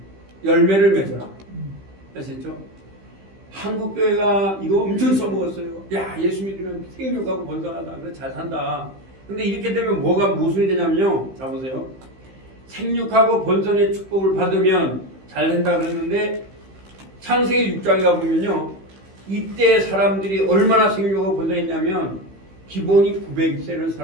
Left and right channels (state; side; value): late; left; 15 ms